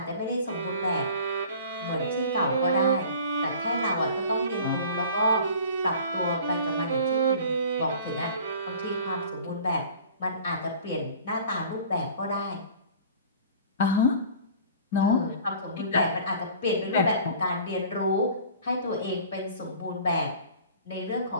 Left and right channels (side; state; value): both; inverted; correlation -0.45